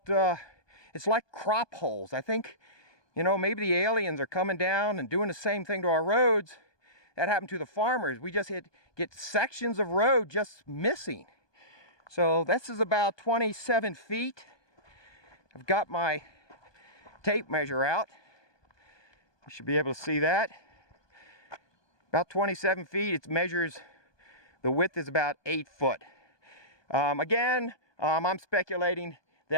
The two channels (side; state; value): right; late; 1.2 ms